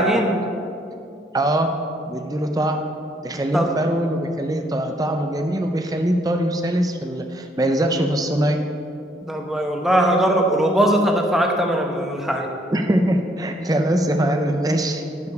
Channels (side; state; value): both; normal; correlation 0.69